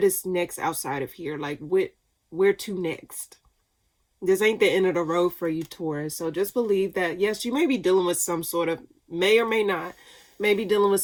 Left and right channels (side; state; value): both; identical; correlation 1.00